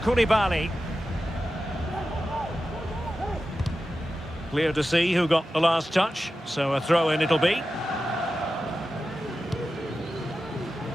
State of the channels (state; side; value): normal; both; correlation 0.93